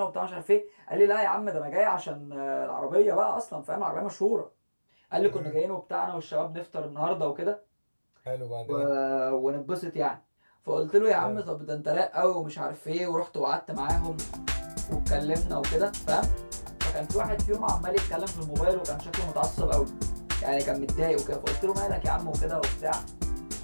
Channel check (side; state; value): both; inverted; correlation -1.00